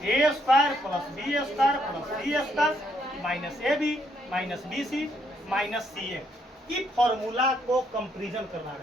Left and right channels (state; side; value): normal; both; correlation 0.72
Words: A square plus B square plus C square minus A B minus B C minus C A. इस formula को comparison करना